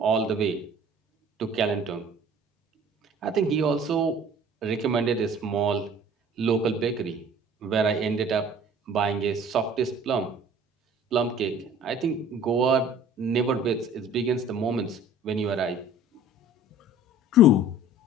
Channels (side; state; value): both; normal; correlation 0.48